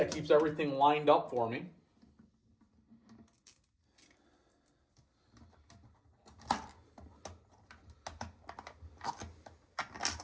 keeps everything lined up for me.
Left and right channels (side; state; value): both; identical; correlation 1.00